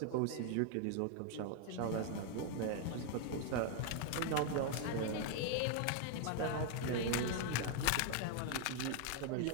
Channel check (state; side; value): different; both; correlation 0.00